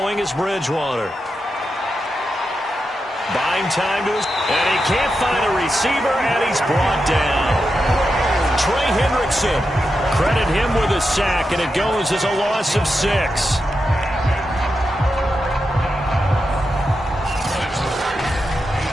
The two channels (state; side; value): normal; both; correlation 0.88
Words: is Bridgewater. Buying time to his, and he can't find a receiver, and he's brought down. Trey Hendrickson, credit him with a sack, and it goes as a loss of 6.